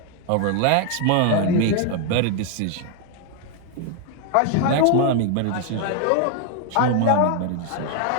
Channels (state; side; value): different; both; correlation 0.00